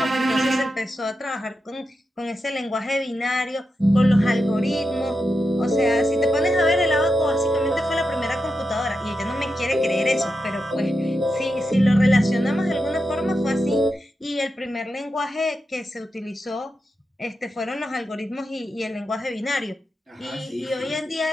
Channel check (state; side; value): normal; both; correlation 0.88